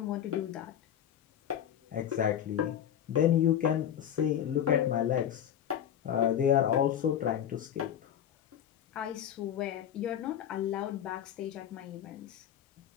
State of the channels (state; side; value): quieter; right; 9.8 dB